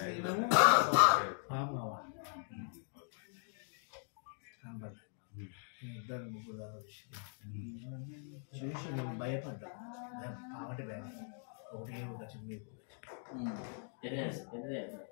పాము కావాలి కనబడ్డా. ఇద్దరు ముగ్గురు చూసి నేను భయపడ్డా. పావటి భయం ఒకటి ఉండొచ్చు మీకు.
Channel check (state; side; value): silent; right; 51 dB below the other